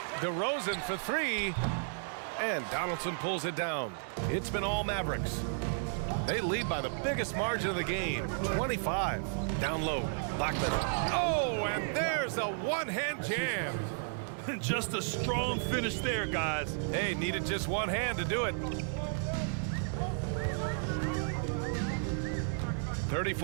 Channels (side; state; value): left; silent; digital silence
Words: DeRozan for three. And Donaldson pulls it down. It's been all Mavericks. They lead by the biggest margin of the game, 25. Down low, Blackman. Oh, and there's a one-hand jam. Just a strong finish there, guys. Hey, needed just one hand to do it.